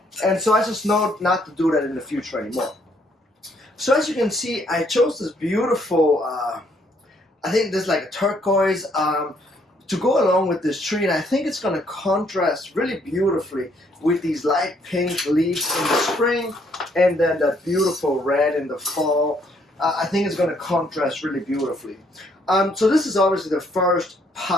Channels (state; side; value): normal; both; correlation 0.68